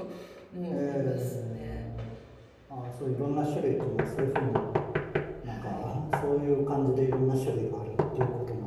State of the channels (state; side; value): identical; both; correlation 1.00